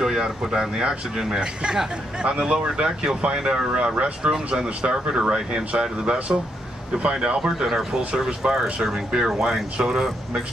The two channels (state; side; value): normal; both; correlation 0.78